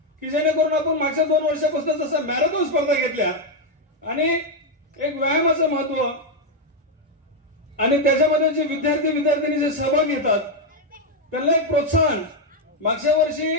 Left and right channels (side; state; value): both; normal; correlation 0.02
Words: की जेणेकरून आपण मागच्या 2 वर्षापासून जसं मॅरेथॉन स्पर्धा घेतल्या आणि एक व्यायामाचं महत्व आणि त्याच्यामध्ये जे विद्यार्थी जे सहभाग घेतात त्यांना एक प्रोत्साहन. मागच्या वर्षी